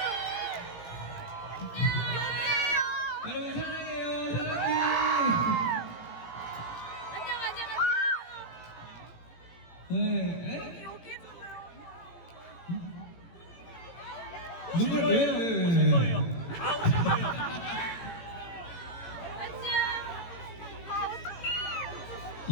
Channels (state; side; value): late; right; 18 ms